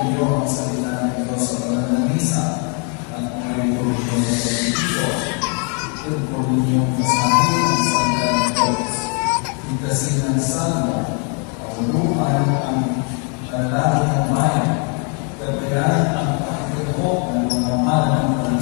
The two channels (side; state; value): right; quieter; 38.2 dB